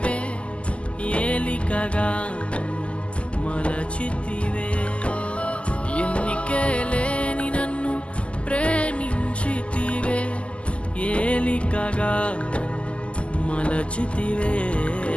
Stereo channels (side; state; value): right; late; 0.056 ms